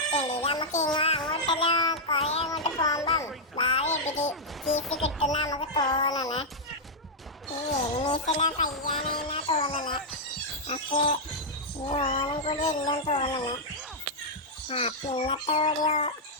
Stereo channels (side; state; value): both; normal; correlation -0.05